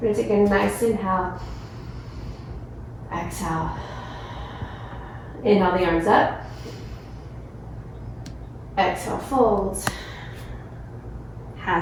We're going to take a nice inhale. Exhale. Inhale the arms up. Exhale, folds.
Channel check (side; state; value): both; identical; correlation 1.00